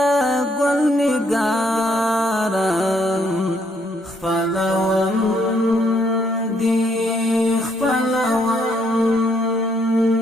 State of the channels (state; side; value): normal; both; correlation 0.71